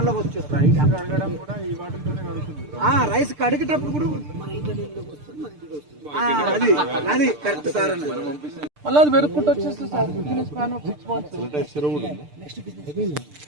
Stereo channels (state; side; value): late; left; 6.7 ms